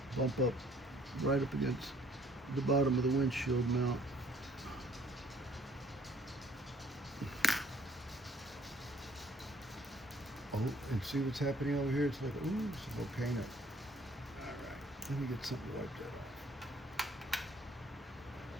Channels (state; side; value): normal; both; correlation 0.59